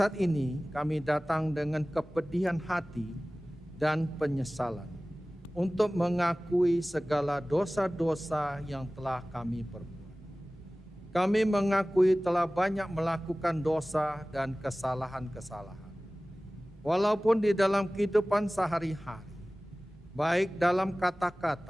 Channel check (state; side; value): normal; both; correlation 0.98